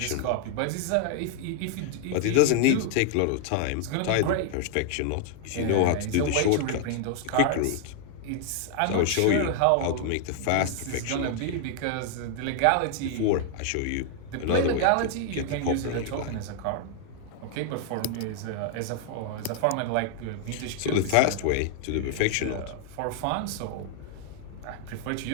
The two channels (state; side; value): different; both; correlation 0.00